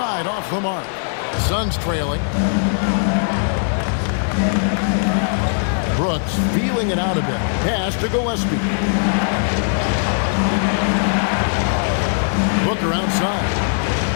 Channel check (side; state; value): right; silent; digital silence